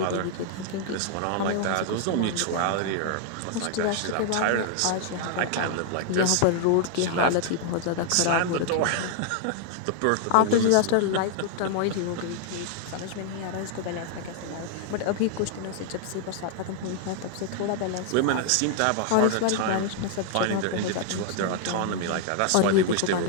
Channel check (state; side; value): different; both; correlation 0.00